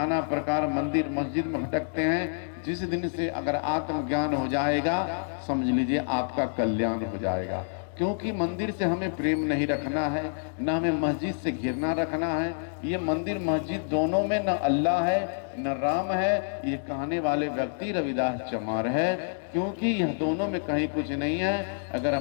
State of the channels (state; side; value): silent; right; digital silence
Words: प्रकार मंदिर मस्जिद में भटकते हैं। जिस दिन से अगर आत्मज्ञान हो जाएगा, समझ लीजिए आपका कल्याण हो जाएगा। क्योंकि मंदिर से हमें प्रेम नहीं रखना है, न हमें मस्जिद से घिरना रखना है। ये मंदिर मस्जिद दोनों में न अल्लाह है न राम है, ये कहने वाले व्यक्ति रविदास चमार है। क्योंकि यह दोनों में कहीं कुछ नहीं है। अगर